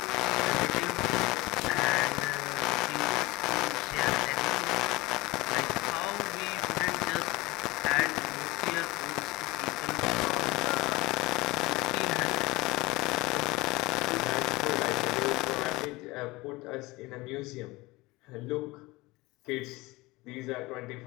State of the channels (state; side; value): quieter; right; 21.6 dB